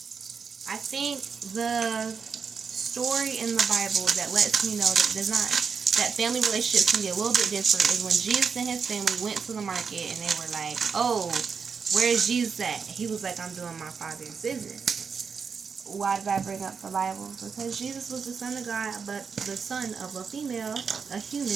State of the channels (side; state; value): left; quieter; 5.8 dB